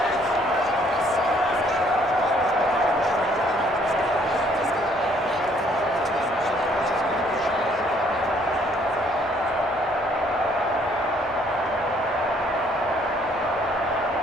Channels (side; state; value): both; normal; correlation 0.63